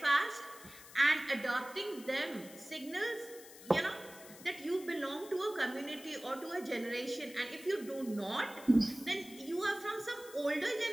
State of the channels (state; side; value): noise; left; hiss, 18 dB below the sound